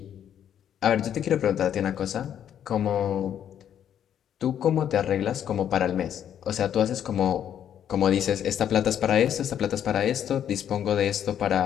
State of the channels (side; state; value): right; quieter; 9.7 dB